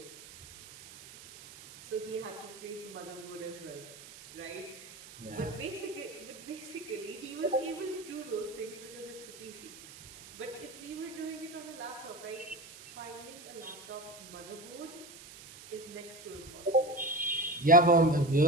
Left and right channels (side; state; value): right; noise; hiss, 16 dB below the sound